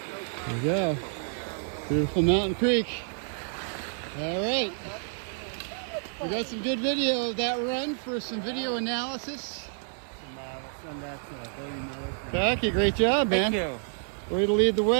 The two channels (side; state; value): left; silent; digital silence